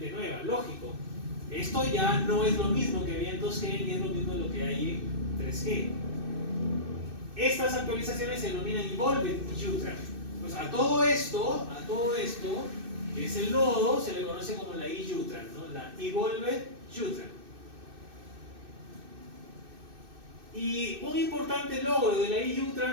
nueva, lógico. Esto ya no es lo mismo que había en 2G, ni es lo mismo lo que hay en 3G. Estas actualizaciones se denominan Evolved UTRAN. Pues a todo esto, que es el nodo, se le conoce como la IUTRAN, ¿no? La Evolved UTRAN. Y un importante logro de la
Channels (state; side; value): late; left; 2.6 ms